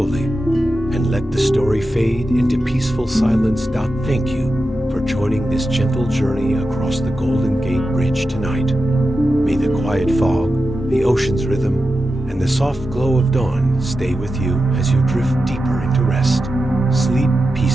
and let the story fade into peaceful silence. Thank you for joining this gentle journey across the Golden Gate Bridge tonight. May the quiet fog, the ocean's rhythm, and the soft glow of dawn stay with you as you drift deeper into rest. Sleep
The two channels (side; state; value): both; normal; correlation 0.91